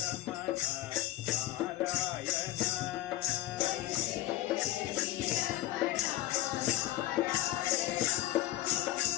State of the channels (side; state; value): right; quieter; 15.2 dB